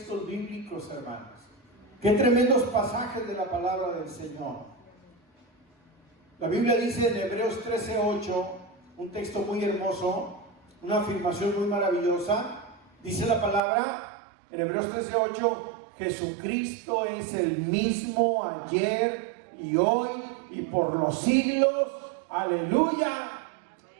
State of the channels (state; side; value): drops out; left; at 13.6 s